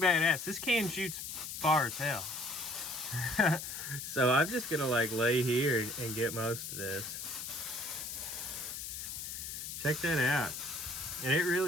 This can shoots far as hell. So I'm just gonna like lay here and get most of this. Check that out. And it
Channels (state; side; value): noise; left; hiss, 7 dB below the sound